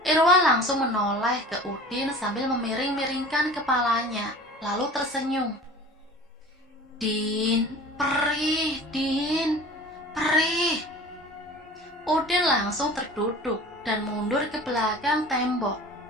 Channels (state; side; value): normal; both; correlation 0.41